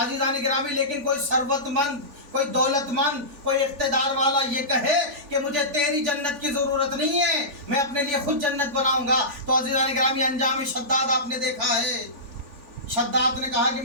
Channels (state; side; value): late; left; 3.4 ms